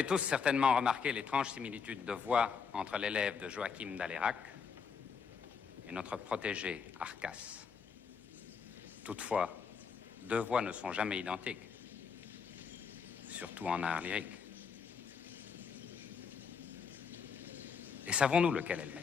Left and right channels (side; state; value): right; quieter; 6.1 dB